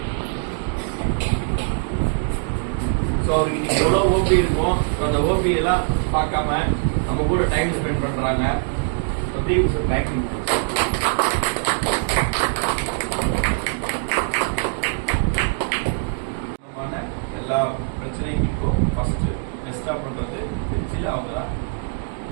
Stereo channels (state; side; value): silent; left; 57 dB below the other